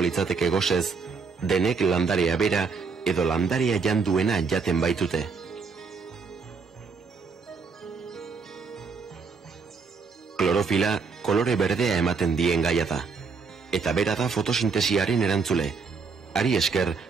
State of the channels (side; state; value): left; quieter; 5.0 dB